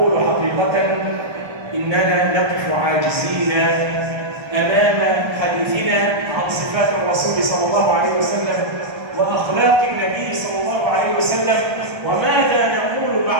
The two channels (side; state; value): left; late; 1.3 ms